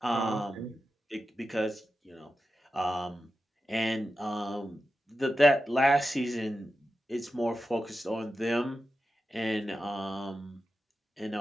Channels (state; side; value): normal; both; correlation 0.91